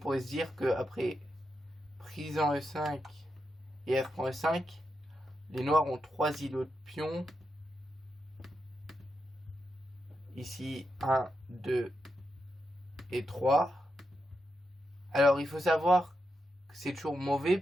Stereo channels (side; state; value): both; normal; correlation 0.86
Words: se dire qu'après prise en E5 et F prend E5, les noirs ont 3 îlots de pion. Ici, 1, 2 et 3. Alors, il faut savoir que c'est toujours